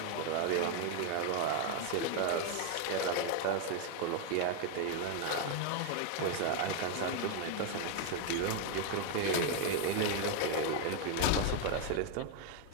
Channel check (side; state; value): both; different; correlation 0.01